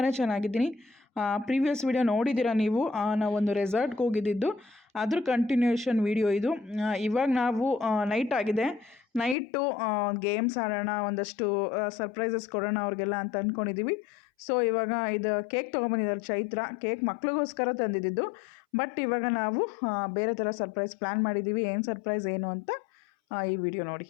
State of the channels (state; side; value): drops out; right; at 9.3 s